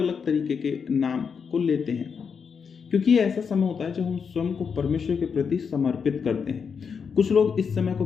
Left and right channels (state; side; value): quieter; right; 6.2 dB